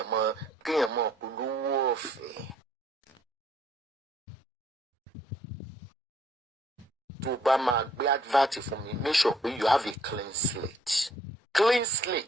mọ olówó ọ̀fẹ́. Tó bá máa gbé advert fún mi, make sure pé you have a clean slate. Clean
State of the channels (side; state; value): both; normal; correlation 0.64